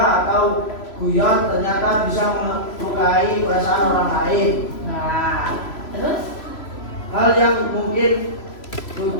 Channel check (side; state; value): right; late; 3.0 ms